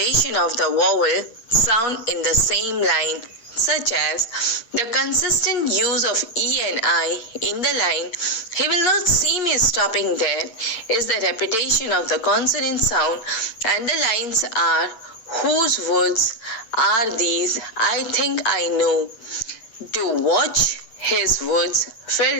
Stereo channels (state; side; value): late; right; 9.0 ms